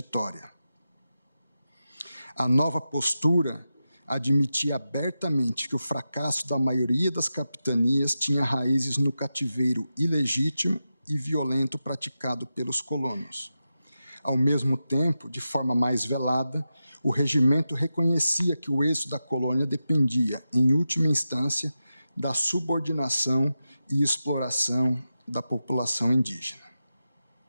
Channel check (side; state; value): both; inverted; correlation -0.91